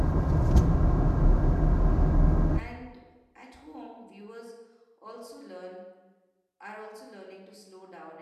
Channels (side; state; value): both; identical; correlation 1.00